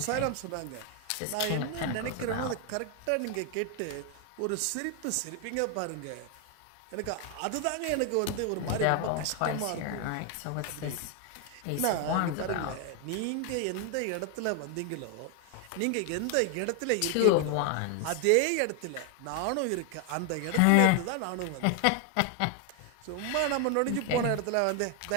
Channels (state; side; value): different; both; correlation 0.00